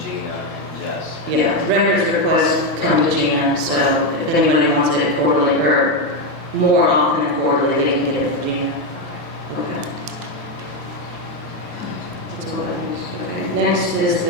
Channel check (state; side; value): normal; both; correlation 0.07